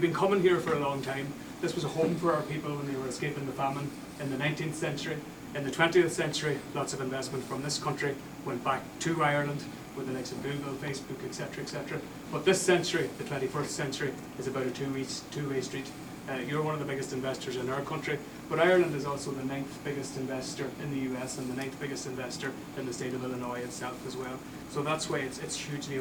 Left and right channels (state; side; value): identical; both; correlation 1.00